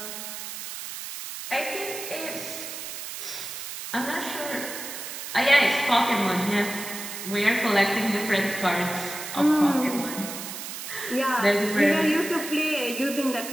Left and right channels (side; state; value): right; noise; hiss, 8 dB below the sound